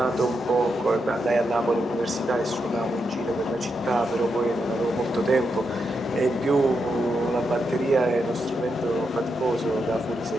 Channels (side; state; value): both; normal; correlation 0.84